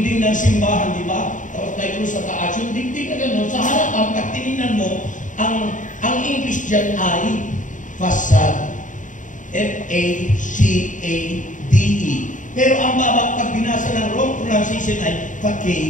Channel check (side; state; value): right; late; 0.37 ms